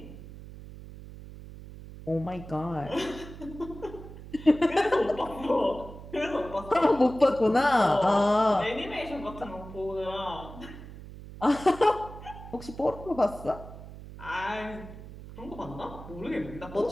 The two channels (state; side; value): noise; right; hum, 14 dB below the sound